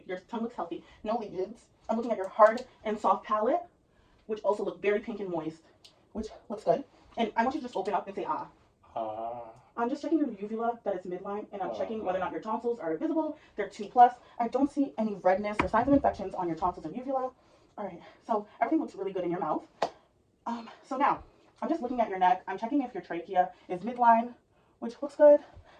Your tongue looks healthy. No lesions. I'm looking at your hard and soft palate, which also look very pink and moist, which looks good. And I want you to just open up and say ah. I'm just checking your uvula that is midline, and I'm checking whether or not your tonsils are visible. They're 2+. I don't see any redness or signs of infections on your tonsils or uvula. All right, so everything looks really good in your mouth. So now, I'm just looking at your neck. I'm checking if your trachea is midline, which looks good.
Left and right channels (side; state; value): both; identical; correlation 1.00